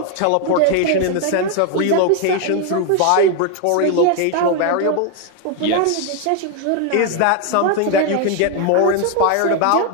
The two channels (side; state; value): both; different; correlation 0.01